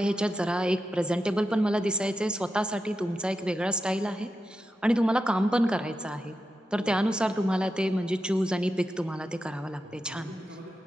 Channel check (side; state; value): both; normal; correlation 0.89